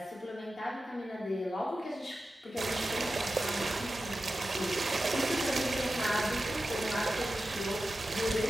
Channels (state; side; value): normal; both; correlation 0.93